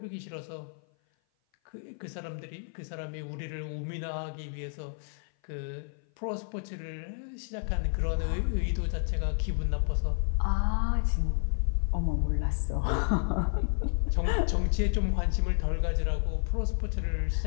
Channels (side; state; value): right; silent; 55 dB below the other